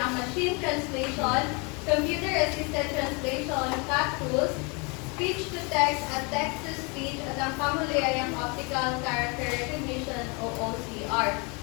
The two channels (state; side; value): quieter; right; 31.0 dB